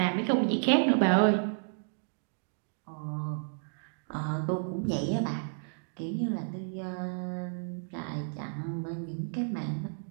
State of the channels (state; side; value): silent; left; digital silence